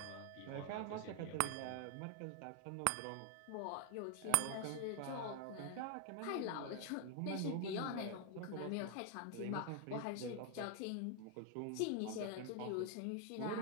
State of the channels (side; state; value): both; different; correlation 0.00